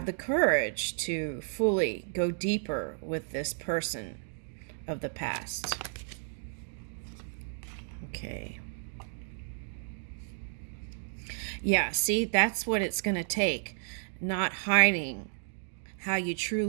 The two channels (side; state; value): left; silent; digital silence